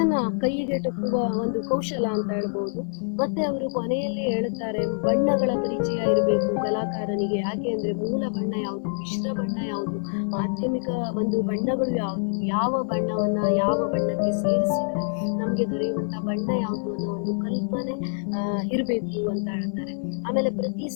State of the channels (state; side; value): silent; right; digital silence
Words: ಕೈಗೆಟುಕುವ ಒಂದು ಕೌಶಲ ಅಂತ ಹೇಳ್ಬೋದು. ಮತ್ತೆ ಅವರು ಕೊನೆಯಲ್ಲಿ ಹೇಳುತ್ತಾರೆ, ಬಣ್ಣಗಳ ಪರಿಚಯ ಇರಬೇಕು ಕಲಾಕಾರನಿಗೆ. ಯಾಕೆ ಅಂದ್ರೆ ಮೂಲ ಬಣ್ಣ ಯಾವುದು, ಮಿಶ್ರ ಬಣ್ಣ ಯಾವುದು, ಮಾಧ್ಯಮಿಕ ಒಂದು ಬಣ್ಣಗಳು ಯಾವುದು, ಯಾವ ಬಣ್ಣವನ್ನ ಯಾವ ಬಣ್ಣಕ್ಕೆ ಸೇರಿಸಿದ್ರೆ ನಮಗೆ ದೊರೆಯುವಂತ ಬಣ್ಣ ಯಾವುದು ಅನ್ನೋ ಒಂದು ಕಲ್ಪನೆ ಇರಬೇಕು ಅಂತ ಹೇಳ್ತಾರೆ. ಆಮೇಲೆ ಪ್ರತಿ